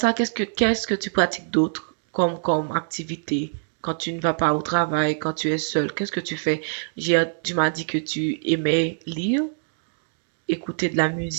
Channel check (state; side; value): silent; left; digital silence